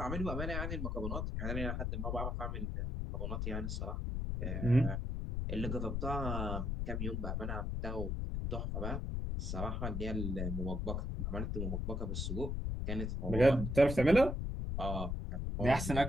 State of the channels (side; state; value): left; noise; rumble, 1 dB below the sound